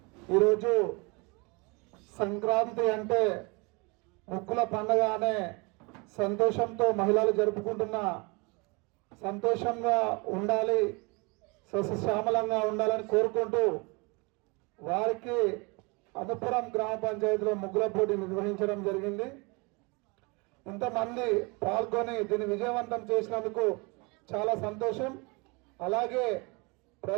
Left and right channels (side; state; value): left; quieter; 28.7 dB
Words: ఈరోజు సంక్రాంతి అంటే ముక్కుల పండుగ అనే సంతోషంతో మహిళలు జరుపుకుంటున్న, సంతోషంగా ఉండాలి, సస్యశ్యామలంగా ఉండాలని కోరుకుంటూ వారికి అనుపురం గ్రామ పంచాయతీలో ముగ్గుల పోటీ నిర్వహించడం జరిగింది. ఇంతమంది పాల్గొని దీన్ని విజయవంతం చేసినందుకు చాలా సంతోషం. అలాగే